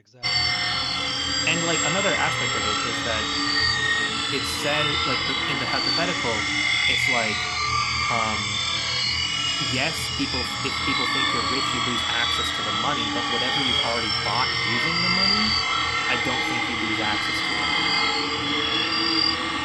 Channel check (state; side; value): identical; both; correlation 1.00